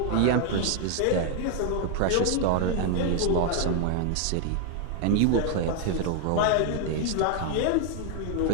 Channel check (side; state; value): both; different; correlation 0.01